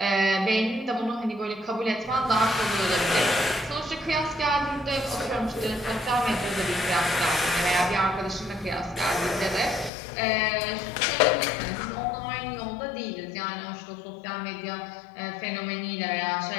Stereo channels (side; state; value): right; drops out; at 9.9 s